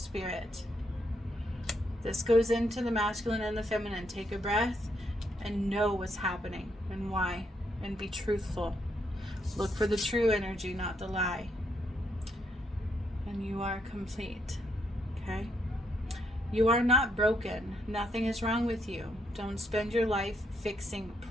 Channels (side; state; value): both; normal; correlation 0.76